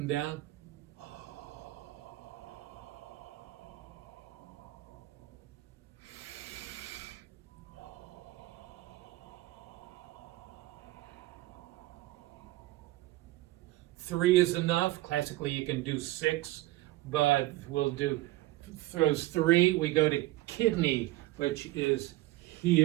down. 3 is enough. Classically, you can do 6, but we'll do those 3. We go to kidney, which is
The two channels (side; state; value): left; quieter; 17.7 dB